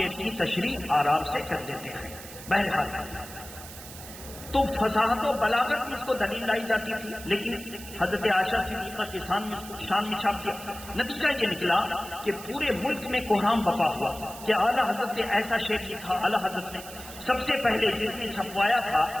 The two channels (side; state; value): right; noise; hiss, 14 dB below the sound